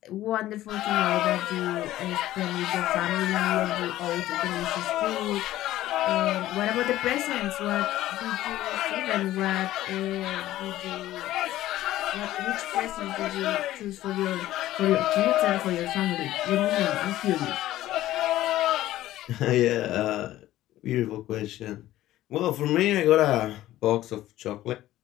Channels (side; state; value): right; quieter; 14.6 dB